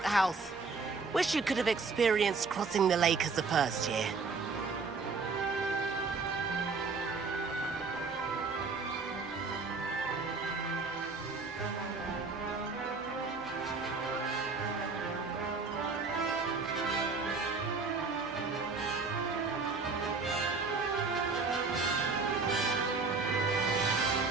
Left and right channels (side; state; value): left; quieter; 4.4 dB